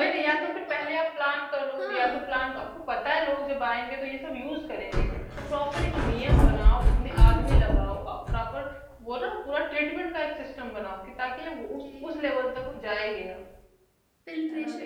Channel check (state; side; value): identical; both; correlation 1.00